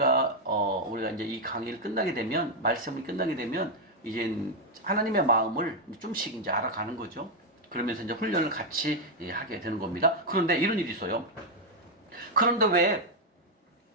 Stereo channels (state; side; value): normal; both; correlation 0.00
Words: 이제 이 강의를 끝나게 되면 말씀이 끝나게 되면 이제 하나님의 마음을 좀씩 이제 알아가는 거죠. 그러면서 이제 훈련을 같이 하게 되는 겁니다. 그런데 이런 일이 있어요. 그런데 왜